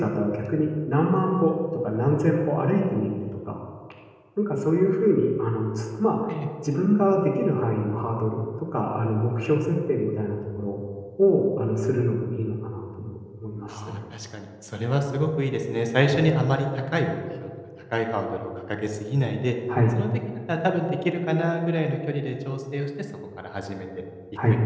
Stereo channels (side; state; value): both; identical; correlation 1.00